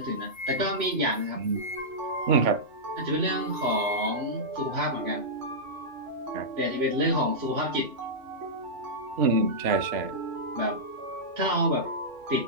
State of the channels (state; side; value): late; left; 2.7 ms